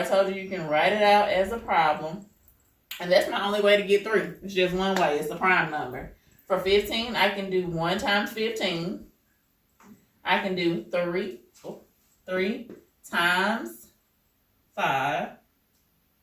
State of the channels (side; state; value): both; identical; correlation 1.00